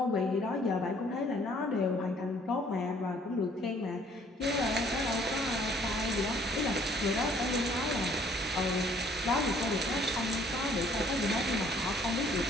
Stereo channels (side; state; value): both; normal; correlation 0.60